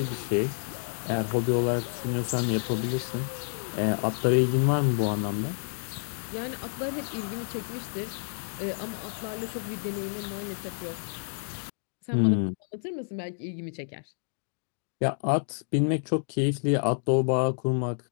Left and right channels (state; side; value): silent; right; digital silence